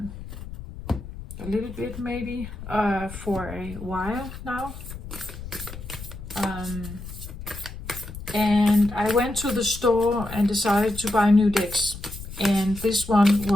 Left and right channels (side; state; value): left; noise; rumble, 12 dB below the sound